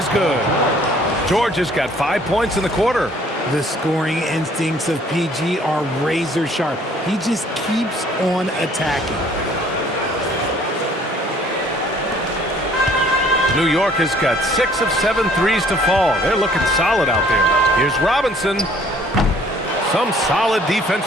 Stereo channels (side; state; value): both; normal; correlation 0.58